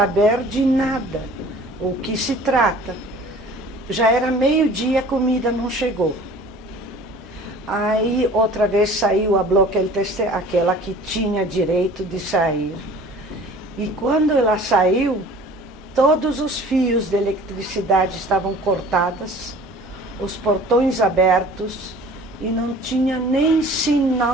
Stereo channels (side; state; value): both; normal; correlation 0.46